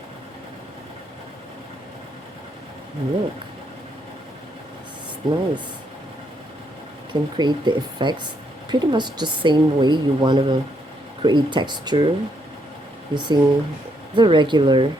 Look, it's nice. Can create the effects pretty much the same way you want to create texture using the regular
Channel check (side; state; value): both; normal; correlation 0.75